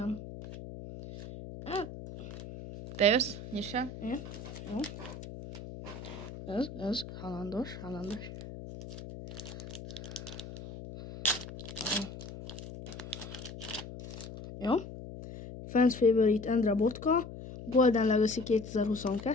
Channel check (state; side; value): noise; left; hum, 11 dB below the sound